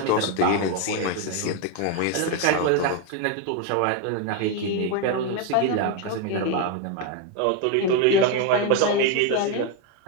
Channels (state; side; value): different; both; correlation 0.02